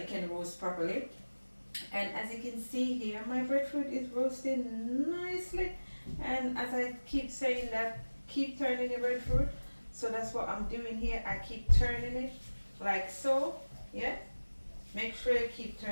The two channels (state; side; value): inverted; both; correlation -1.00